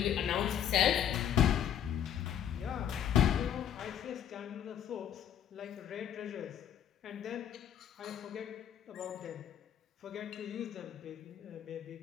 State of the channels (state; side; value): quieter; right; 9.7 dB